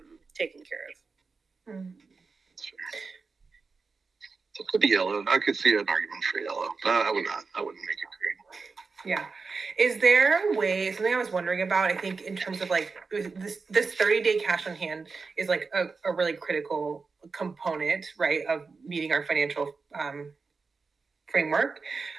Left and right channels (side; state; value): left; quieter; 4.5 dB